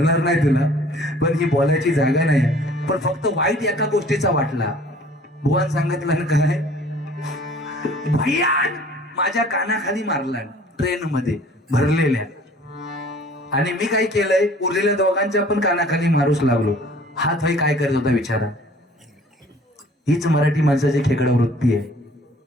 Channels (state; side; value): normal; both; correlation 0.52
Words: नाही तुला, पण ही बोलायची जागा नाही. पण फक्त वाईट एका गोष्टीचा वाटला, बुवान सांगितलं ना काय, भयान माझ्या कानाखाली मारला ट्रेन मध्ये भरलेल्या, आणि मी काय केलंय, उरलेल्या दोघांच्या पण कानाखाली मारूच लागलो. हात भाई काय करत होता विचारा, हीच मराठी माणसाची खेकडा वृत्ती आहे.